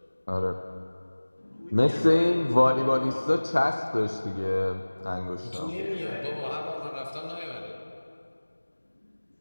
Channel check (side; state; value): both; inverted; correlation -1.00